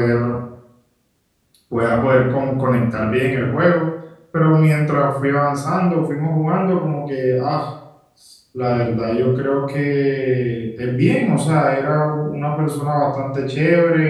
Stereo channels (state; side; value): identical; both; correlation 1.00